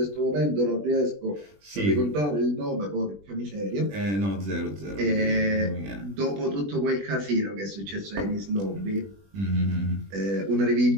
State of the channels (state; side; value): late; left; 20 ms